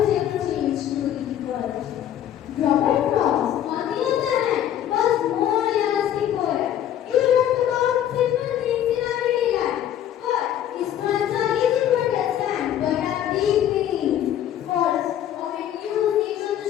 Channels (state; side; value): quieter; right; 10.9 dB